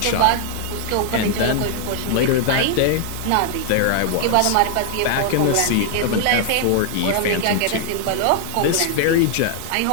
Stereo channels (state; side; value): different; both; correlation 0.00